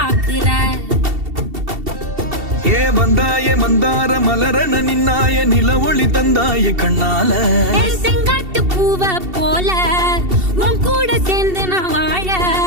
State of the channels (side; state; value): left; late; 2.7 ms